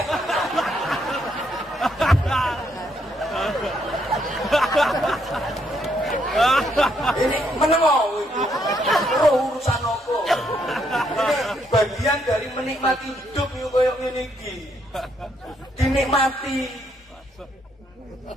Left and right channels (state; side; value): normal; both; correlation 0.74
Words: Ini menengok itu urusan apa? Ini bagian dari menikmati hidup yuk koyok ngene iki. Dinikmati.